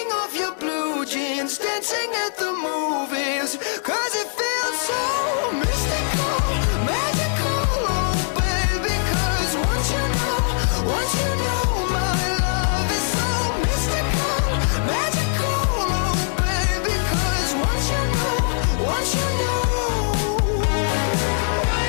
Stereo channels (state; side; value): silent; right; digital silence